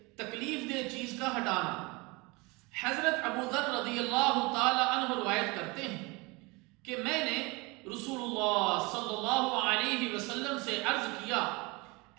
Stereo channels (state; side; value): quieter; left; 25.9 dB